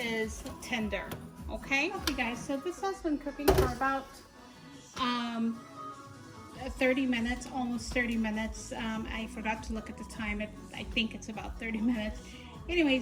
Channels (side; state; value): both; identical; correlation 1.00